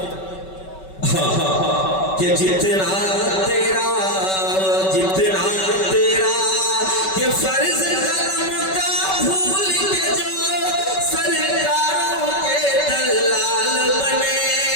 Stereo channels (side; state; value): right; late; 5.3 ms